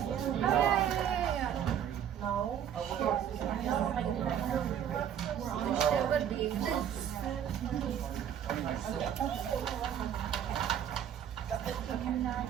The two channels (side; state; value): left; quieter; 9.5 dB